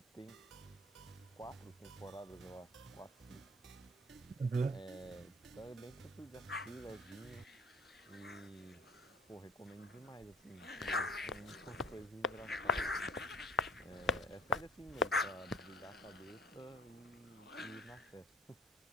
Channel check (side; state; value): both; normal; correlation 0.45